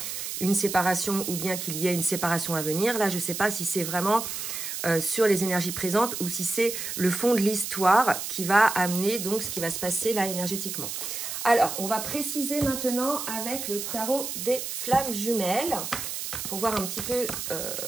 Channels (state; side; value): noise; right; hiss, 5 dB below the sound